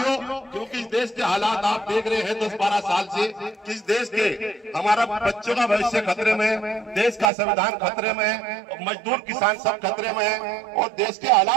क्योंकि इस देश के हालात आप देख रहे हैं 10-12 साल से, किस देश के हमारा बच्चों का भविष्य खतरे में, देश का संविधान खतरे में है, मजदूर किसान सब खतरे में है और देश के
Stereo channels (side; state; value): left; drops out; at 7.3 s